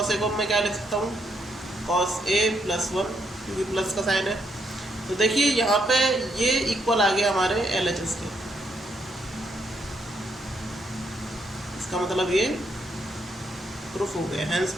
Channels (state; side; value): normal; both; correlation 0.75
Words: a को मैं क्या लिख सकता हूँ, कॉस a प्लस 1, क्योंकि प्लस का साइन है। तो देखिए यहाँ पे ये इक्वल आ गया हमारे LHS के, इसका मतलब ये प्रूफ हो गया, हैंस